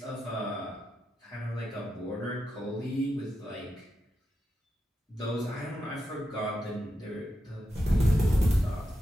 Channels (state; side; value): normal; both; correlation 0.87